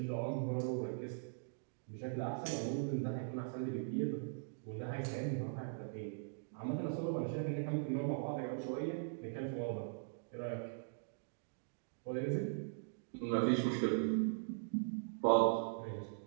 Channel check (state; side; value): silent; left; digital silence